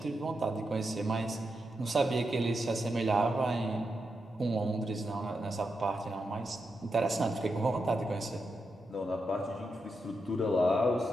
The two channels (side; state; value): both; normal; correlation 0.86